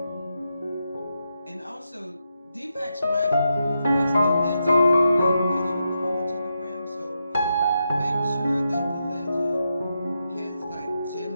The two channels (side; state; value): both; inverted; correlation -0.85